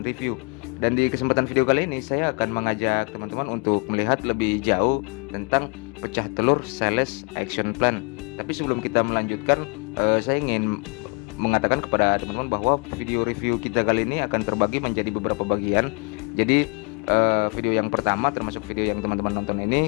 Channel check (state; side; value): quieter; right; 33.4 dB